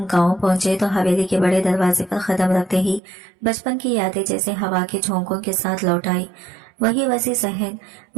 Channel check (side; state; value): left; drops out; at 3.0 s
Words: गांव पहुंचे तो हवेली के बड़े दरवाजे पर कदम रखते ही बचपन की यादें जैसे हवा के झोंकों के साथ लौट आई। वही वसी सहन,